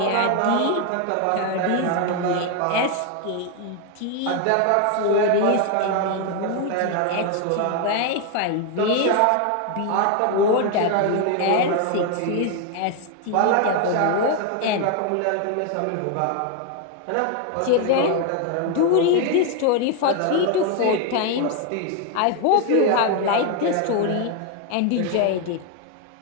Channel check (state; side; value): different; both; correlation 0.01